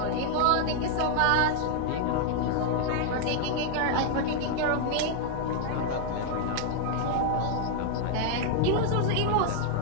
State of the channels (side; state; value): both; different; correlation 0.00